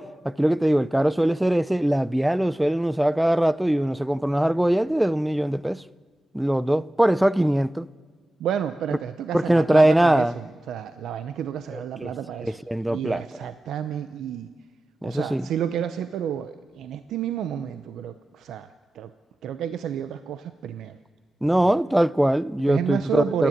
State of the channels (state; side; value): normal; both; correlation 0.95